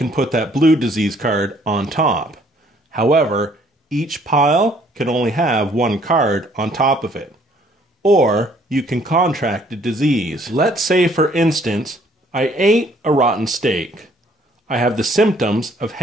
put that blue disease card on top. However, each pile can only have 1 card on top of it. Or you can contract a disease. Let's say, for instance, I ate a rotten steak. I have the symptoms of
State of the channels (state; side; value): normal; both; correlation 0.62